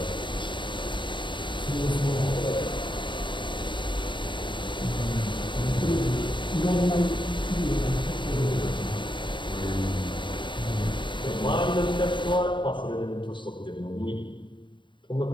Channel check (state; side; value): late; right; 0.23 ms